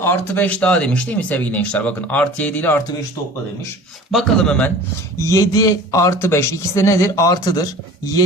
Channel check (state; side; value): normal; both; correlation 0.43